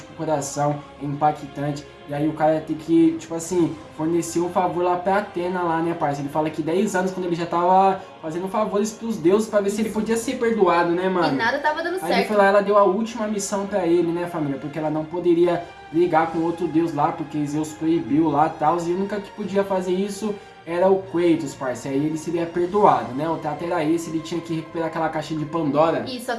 com o coração, é impactante. E aí o cara tem que, tipo assim, fornecer um favor lá pra Atena lá, né, parça? Ele fala que 10 anos, quando ele já tava fazendo favores pros deuses pra ver se ele podia ser perdoado, né, E mano? nada tava dando Aí ele certo. foi lá, ela deu a última missão pra ele, né, família? Porque ela não poderia brigar com outro deus lá, porque Zeus proibiu lá e tal. E a única que podia fazer isso era o Kratos, parça. Aí ele seria perdoado, né? O trato era esse, ele tinha que recuperar aquela caixa de Pandora. Isso,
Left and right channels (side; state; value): both; identical; correlation 1.00